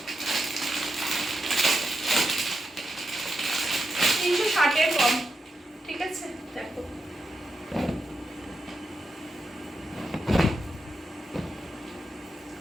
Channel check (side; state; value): both; normal; correlation 0.86